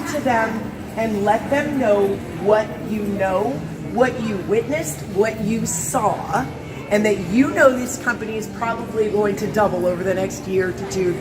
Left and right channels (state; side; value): identical; both; correlation 1.00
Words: to them and let them know what you know, what you witnessed, what you saw, and that you know this company is probably going to double over the next year to 2